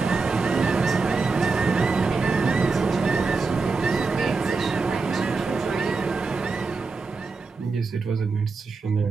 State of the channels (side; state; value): left; quieter; 4.2 dB